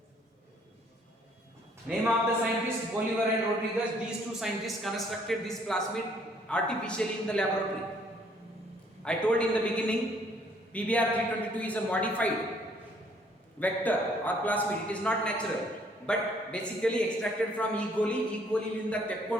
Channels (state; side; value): normal; both; correlation 0.63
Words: Name of the scientists Bolivar and Rodriguez. These two scientists constructed this plasmid artificially in the laboratory. I told in the beginning, PBr 322 is a modified vector or plasmid. It is not natural, but basically extracted from E. coli. E. coli ಲಿಂದ